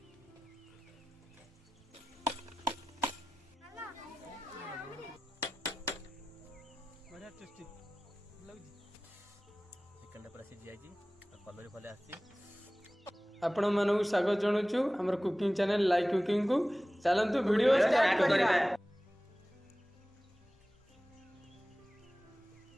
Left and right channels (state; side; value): normal; both; correlation 0.97